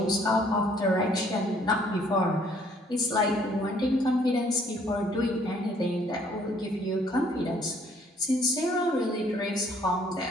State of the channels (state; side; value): normal; both; correlation 0.62